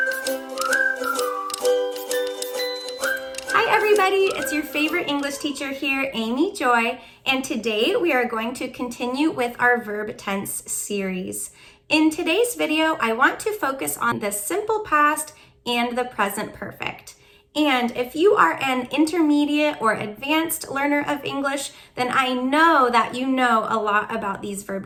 everybody, it's your favorite English teacher here, Amy Joy, and today we are going to continue with our verb tense series. In today's video, I want to focus on the simple past and the present perfect. And if you are an intermediate or advanced learner of English, then I know that you know a lot about these verb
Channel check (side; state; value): both; identical; correlation 1.00